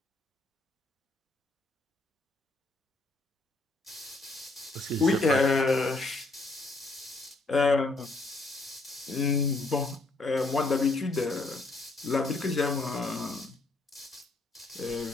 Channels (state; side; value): quieter; right; 3.1 dB